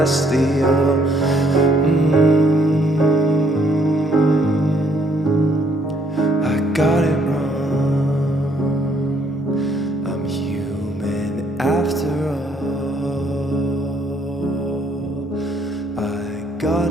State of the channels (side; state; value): both; normal; correlation 0.68